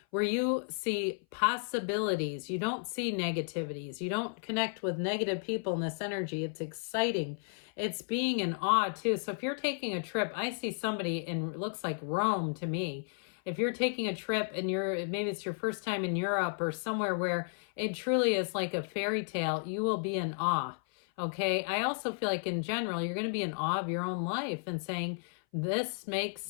where you see possibilities. You don't see negativities. You don't connect with negative people in this energy. It's exciting. It's being in awe too. So if you're taking a trip, I see somebody in, it looks like Rome to me. If you're taking a trip and maybe it's your first time in Europe or somewhere where it truly is like a fairy tale, you will be in awe. Okay. I also feel like in general, you're going to be in awe of your own life and saying, this makes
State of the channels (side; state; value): right; silent; 56 dB below the other